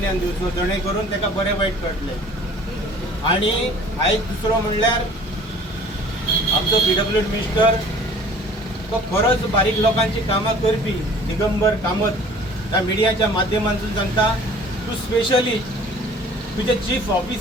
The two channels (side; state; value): both; normal; correlation 0.49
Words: दिवचो जणे करून ताका बरें वायट कळटलें आणि आयज दुसरो म्हणल्यार आमचो PWD मिनिस्टर तो खरोच बारीक लोकांची कामां करपी दिगंबर कामत त्या मिडियाच्या माध्यमांतून सांगता तूं स्पेशली तुजे चीफ